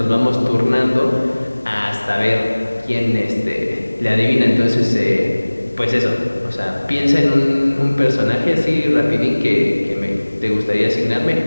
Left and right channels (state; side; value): inverted; both; correlation -1.00